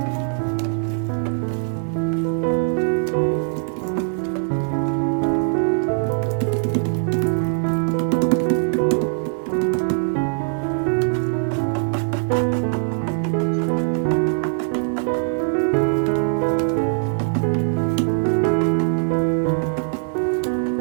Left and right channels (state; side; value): silent; left; digital silence